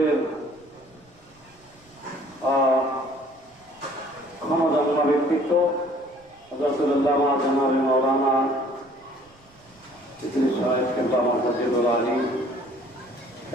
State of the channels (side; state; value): right; noise; rumble, 29 dB below the sound